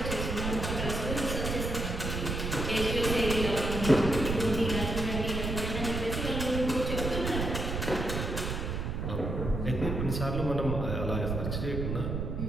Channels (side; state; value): right; noise; rumble, 2 dB below the sound